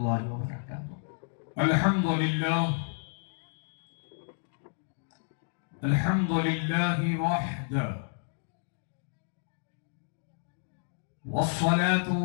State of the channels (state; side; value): silent; right; digital silence